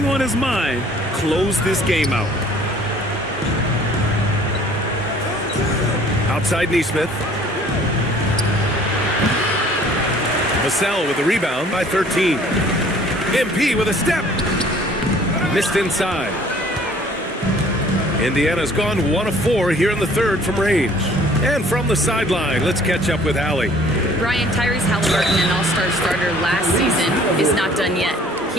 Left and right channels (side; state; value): both; normal; correlation 0.54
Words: on his mind: close this game out. Outside Neesmith. Vassell with the rebound by 13. MP with a step. Missed inside. Indiana's gone 1 of 4 here in the third from range. And from the sideline, let's catch up with Allie. Brian, Tyrese Halliburton, an all-star starter last season, is not done yet.